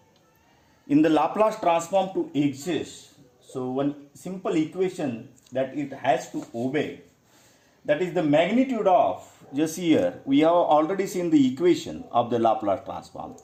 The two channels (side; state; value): both; identical; correlation 1.00